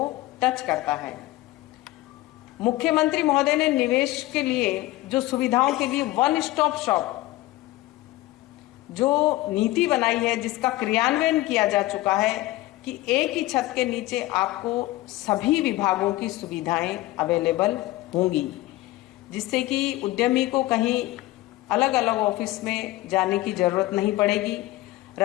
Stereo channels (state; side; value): quieter; right; 17.8 dB